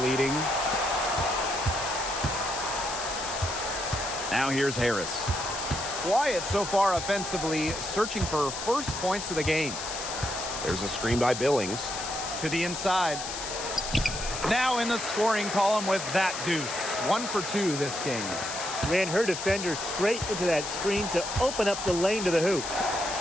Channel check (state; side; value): noise; left; hiss, 6 dB below the sound